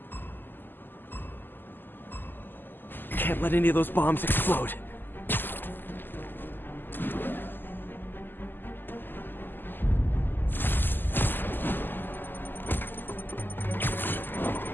Can't let any of those bombs explode.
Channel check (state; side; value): late; right; 0.092 ms